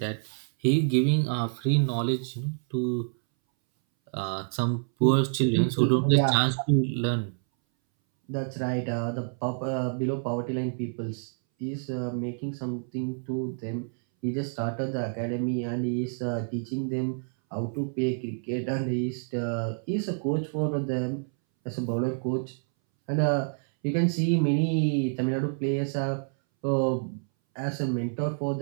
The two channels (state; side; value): silent; left; 59 dB below the other